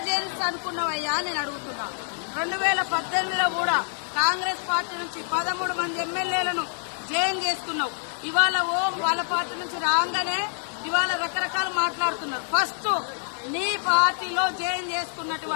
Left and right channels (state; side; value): silent; right; digital silence